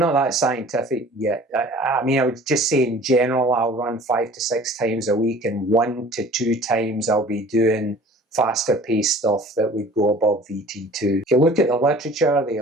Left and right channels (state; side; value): normal; both; correlation 0.47